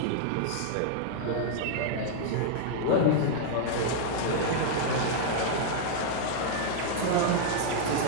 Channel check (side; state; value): both; different; correlation -0.01